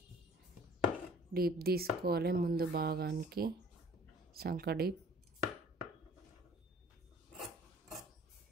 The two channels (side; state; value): both; normal; correlation 0.52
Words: డీప్ తీసుకోవాలి ముందు భాగానికి, సంక డీప్.